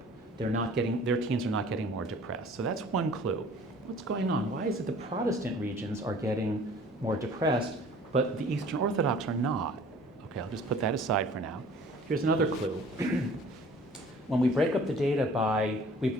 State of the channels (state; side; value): normal; both; correlation 0.50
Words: Their teens are not getting more depressed. So that's one clue. What's going on? Why is it the Protestant regions are getting more depressed, but the Eastern Orthodox are not? Okay, I'll just put that aside for now. Here's another clue. When we break up the data